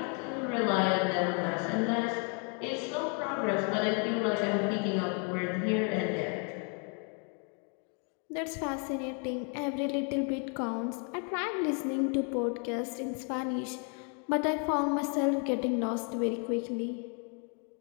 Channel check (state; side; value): quieter; right; 38.9 dB